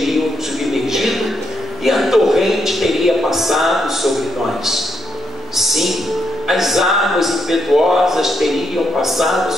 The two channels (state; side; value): normal; both; correlation 0.78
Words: submergido e a torrente teria passado sobre nós. Sim, as águas impetuosas teriam passado